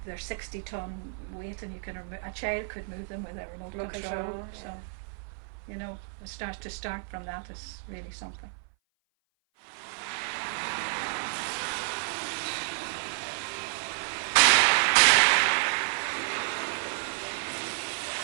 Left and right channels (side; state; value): left; silent; 56 dB below the other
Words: they're 60-ton weight, and a child could move them with a remote control. So, yeah. you know, to start from that is really something.